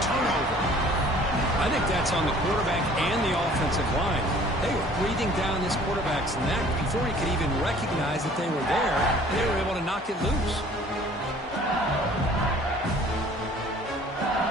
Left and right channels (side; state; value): both; normal; correlation 0.52